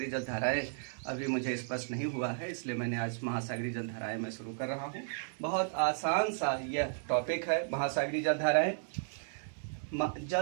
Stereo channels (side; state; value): left; silent; digital silence